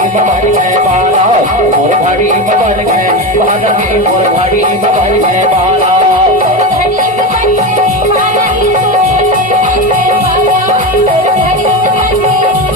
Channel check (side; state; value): both; normal; correlation 0.18